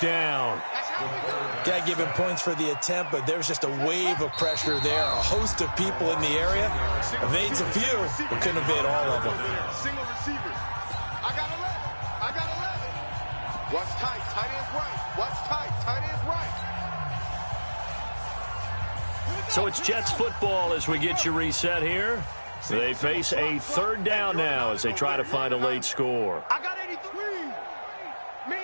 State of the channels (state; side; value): inverted; both; correlation -1.00